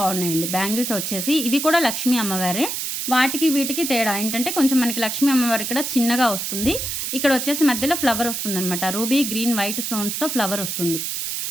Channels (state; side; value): noise; right; hiss, 3 dB below the sound